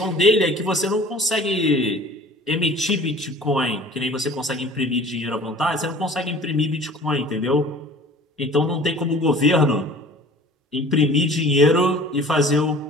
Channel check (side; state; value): both; normal; correlation 0.46